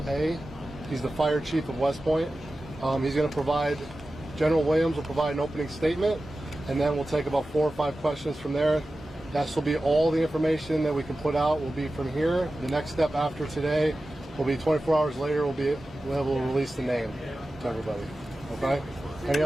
He's the fire chief of West Point. He's going to provide, General Williams will provide an opening statement, and then we'll take about 4 or 5 questions from there. That will be all the information that we can put out will be from here. The next step after today will be 24 hours later, we'll be able to release the name to everybody. Okay? Any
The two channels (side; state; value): both; normal; correlation 0.94